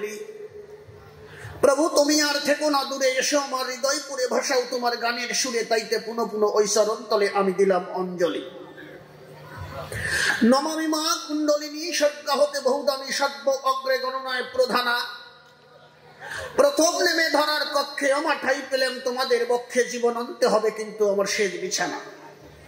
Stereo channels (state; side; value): identical; both; correlation 1.00